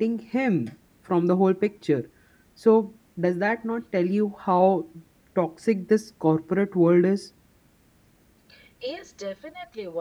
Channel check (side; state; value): both; identical; correlation 1.00